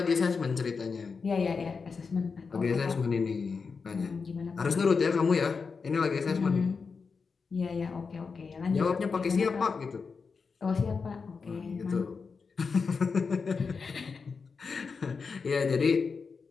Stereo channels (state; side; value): quieter; right; 5.1 dB